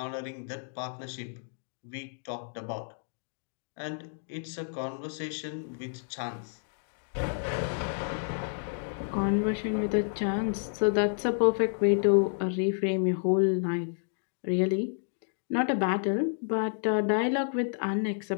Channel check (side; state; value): right; silent; digital silence